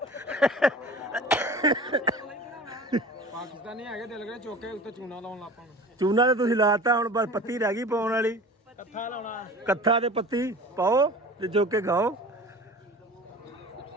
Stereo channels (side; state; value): both; normal; correlation 0.39